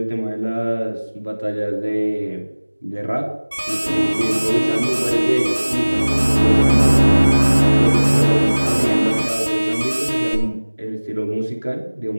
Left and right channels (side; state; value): both; inverted; correlation -1.00